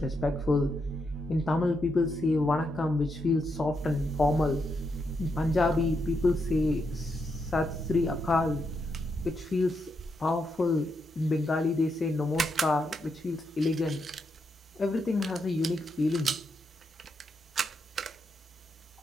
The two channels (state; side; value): normal; both; correlation 0.82